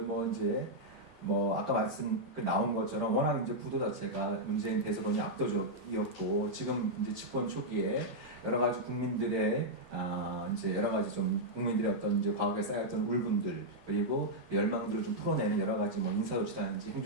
아까 나온 것처럼 워낙 이제 구도 자체가 문재인 대선론이 압도적이었고 지금 이제 집권 초기에 여러 가지 국민들의 이제 여러 가지 좀 국민들의 어떤 이제 과거에 쌓였던 울분들 그리고 열망들을 좀 풀어내는 여러 가지 뭐 인사조치라든지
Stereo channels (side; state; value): both; normal; correlation -0.05